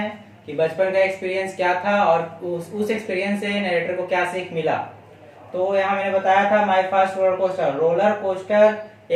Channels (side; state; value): both; identical; correlation 1.00